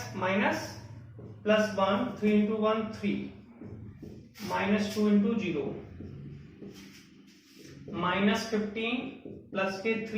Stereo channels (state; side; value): identical; both; correlation 1.00